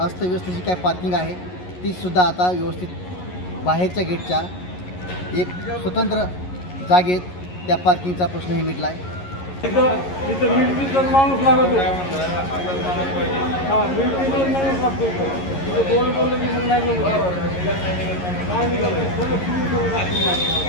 अस्तव्यस्त जी काय पार्किंग आहे तीसुद्धा आता व्यवस्थित बाहेरच्या गेटच्या एक स्वतंत्र जागेत त्या पार्किंगचा प्रश्नही मिटला आहे.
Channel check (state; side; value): late; right; 11 ms